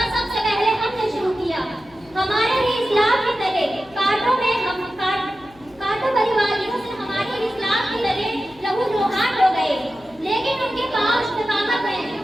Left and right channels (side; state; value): left; noise; hum, 27 dB below the sound